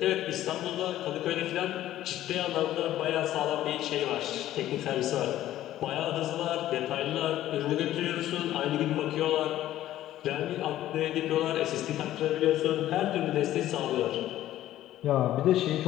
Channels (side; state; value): right; quieter; 13.5 dB